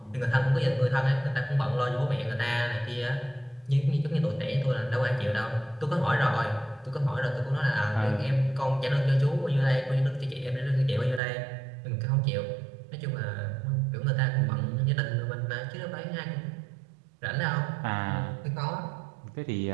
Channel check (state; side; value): drops out; left; at 11.2 s